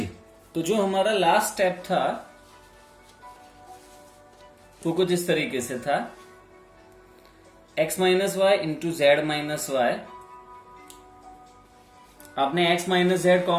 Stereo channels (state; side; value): identical; both; correlation 1.00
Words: तो जो हमारा लास्ट स्टेप था वो कुछ इस तरीके से था, x minus y into z minus y आपने x माइनस जेड